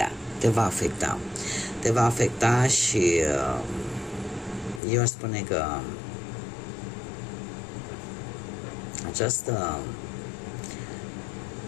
te va afecta. Te va afecta și eu aș spune că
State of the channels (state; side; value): drops out; right; at 4.8 s